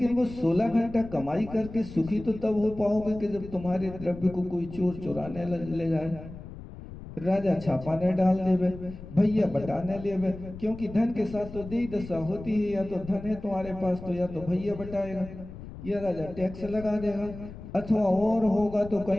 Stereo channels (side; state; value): left; noise; rumble, 14 dB below the sound